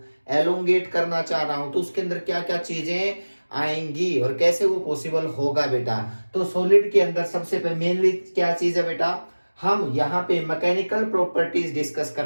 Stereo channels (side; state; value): both; inverted; correlation -1.00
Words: एलोंगेट करना चाह रहा हूं, तो उसके अंदर क्या क्या चीजें आएंगी और कैसे वो पॉसिबल होगा बेटा। तो सॉलिड के अंदर सबसे पहले मेनली क्या चीज है बेटा, हम यहाँ पे मैकेनिकल प्रॉपर्टीज डिस्कस